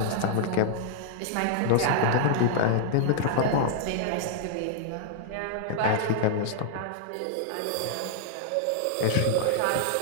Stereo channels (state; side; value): different; both; correlation -0.01